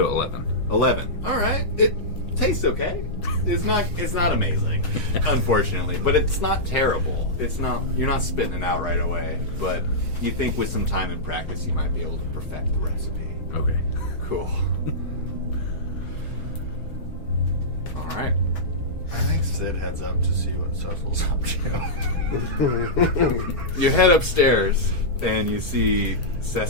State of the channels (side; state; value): right; late; 6.2 ms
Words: 11. 11. All right. It tastes okay. It's not amazing, unfortunately, but it's not terrible. It's not. You're not spitting it out right away, but you think with some time and practice, you might be able to perfect the recipe. Okay. Cool. All right. I think Sid heads up to see what Cecil's up to. You head upstairs and you see